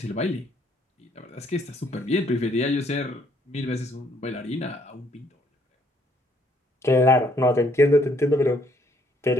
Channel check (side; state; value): both; normal; correlation 0.66